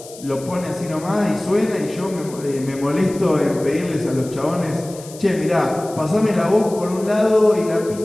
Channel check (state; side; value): noise; left; hiss, 18 dB below the sound